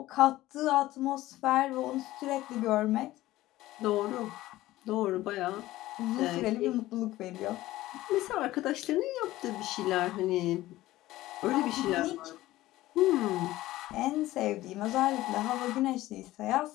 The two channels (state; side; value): quieter; right; 16.4 dB